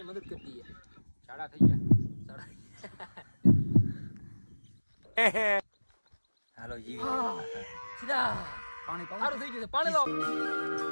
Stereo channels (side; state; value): both; inverted; correlation -1.00